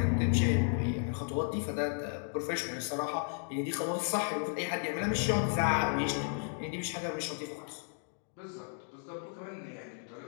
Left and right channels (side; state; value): right; silent; 55 dB below the other